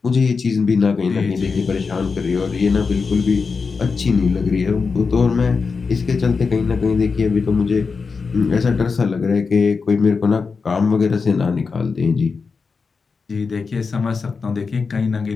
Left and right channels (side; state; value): right; quieter; 4.9 dB